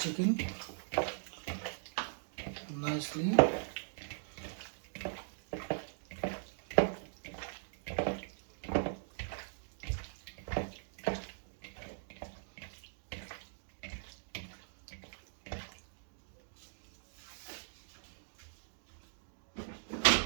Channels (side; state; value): left; silent; digital silence